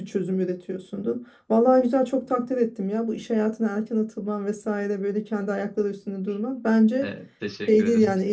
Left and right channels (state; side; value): identical; both; correlation 1.00